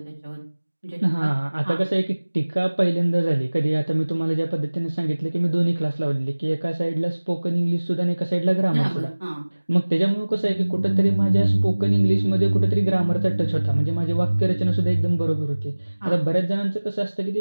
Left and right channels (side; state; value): both; inverted; correlation -1.00